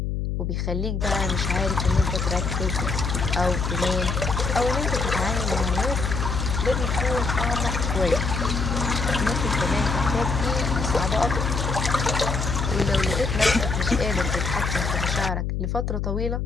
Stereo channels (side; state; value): left; noise; hum, 1 dB below the sound